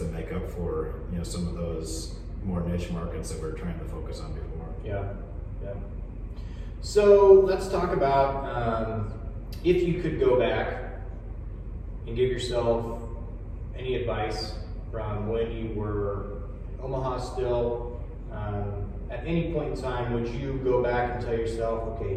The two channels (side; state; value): both; identical; correlation 1.00